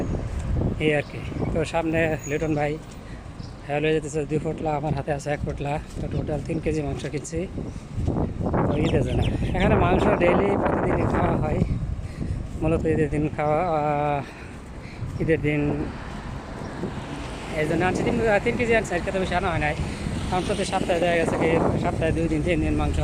এই আর কি। তো সামনে লিটন ভাই হয়ে যেতেছে 2 ফুটলা, আমার হাতে আছে 1 ফুটলা। তো টোটাল 3 কেজি মাংস কিনছি ঈদের জন্য। এখানে মাংস ডেইলি প্রতিদিনই খাওয়া হয়, মূলত ঈদের দিন খাওয়া, ঈদের দিন এই জন্য আনছি 3 কেজি আনছি। আর খেতে বেশি আনা হয় নাই, কারণ প্রতি সপ্তাহে দেখা গেছে কি সপ্তাহে 2 দিন 3 দিন মাংস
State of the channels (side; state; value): both; identical; correlation 1.00